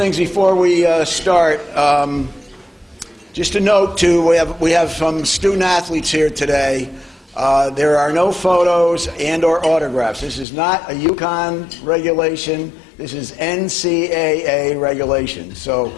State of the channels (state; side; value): drops out; right; at 10.5 s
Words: before we start. Just a note, too, we have some student athletes here today. There are no photos and or autographs. This is not a UConn regulation. This is NCAA regulation. So